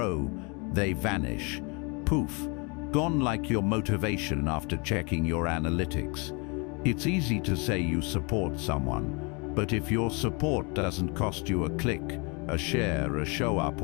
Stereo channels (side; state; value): right; quieter; 31.3 dB